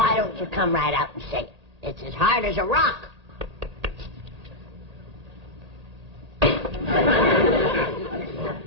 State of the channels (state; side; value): late; left; 1.8 ms